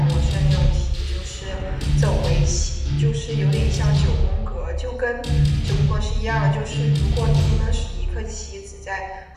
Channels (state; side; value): identical; both; correlation 1.00